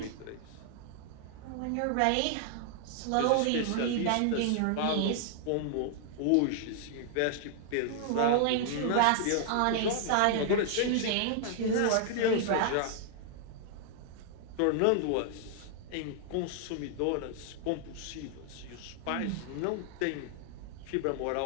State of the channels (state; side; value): different; both; correlation 0.00